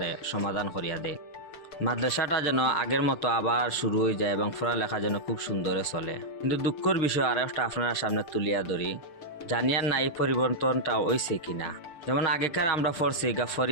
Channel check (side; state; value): right; late; 6.7 ms